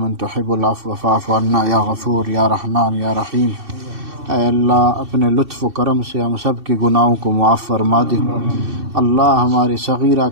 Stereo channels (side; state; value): left; late; 2.6 ms